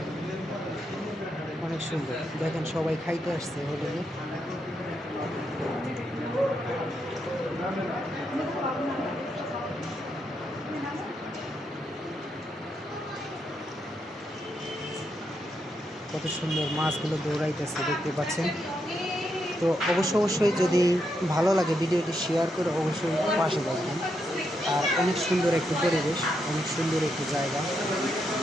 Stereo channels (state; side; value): normal; both; correlation 0.81